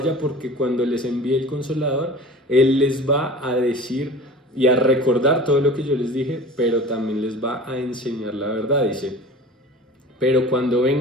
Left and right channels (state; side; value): normal; both; correlation 0.39